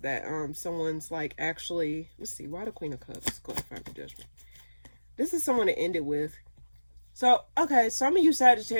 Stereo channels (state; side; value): inverted; both; correlation -1.00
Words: someone's like actually, let's see, why the Queen of Cups? Go ahead, find the Judgment. This is someone to end it with. So, okay, some of you